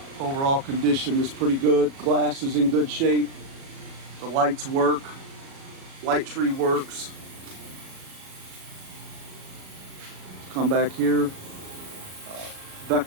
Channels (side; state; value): left; late; 37 ms